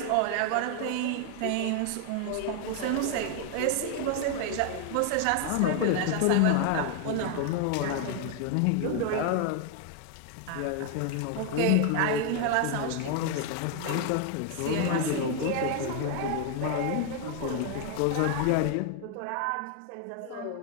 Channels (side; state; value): both; different; correlation 0.00